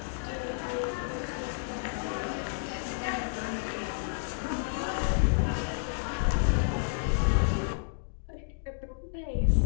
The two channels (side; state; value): right; silent; digital silence